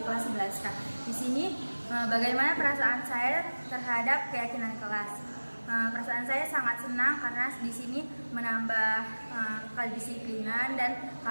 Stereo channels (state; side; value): inverted; both; correlation -1.00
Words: kelas 11K. Di sini bagaimana perasaan saya terhadap keyakinan kelas? Perasaan saya sangat senang karena di sini menambah kedisiplinan dan